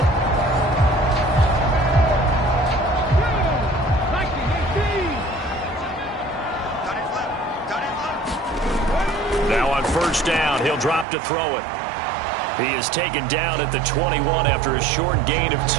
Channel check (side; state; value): left; drops out; at 11.1 s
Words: first down. He'll drop to throw it. He is taken down at the 21 after a short gain of